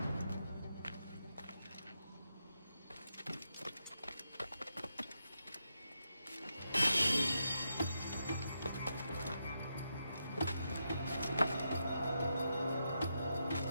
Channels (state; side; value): inverted; both; correlation -0.84